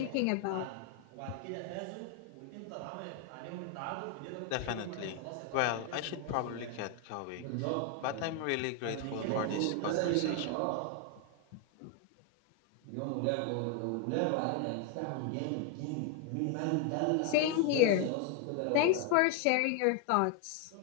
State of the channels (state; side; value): different; both; correlation 0.01